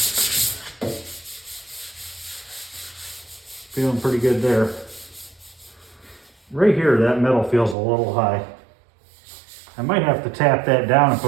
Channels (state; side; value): drops out; left; at 7.8 s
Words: Feeling pretty good there. Right here, that metal feels a little high. I might have to tap that down and